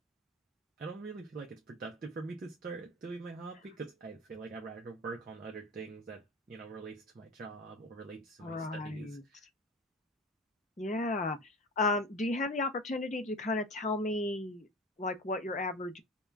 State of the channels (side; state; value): both; normal; correlation 0.32